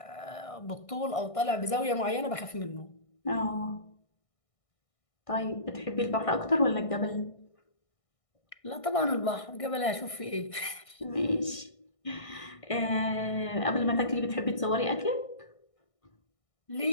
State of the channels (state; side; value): late; right; 1.6 ms